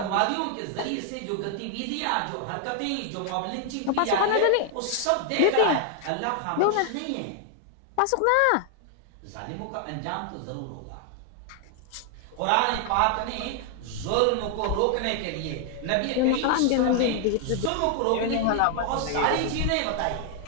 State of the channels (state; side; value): different; both; correlation 0.00